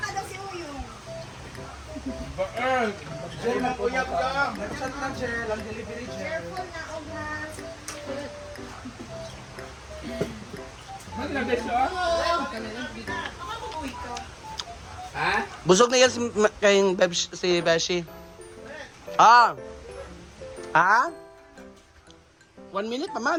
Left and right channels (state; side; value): identical; both; correlation 1.00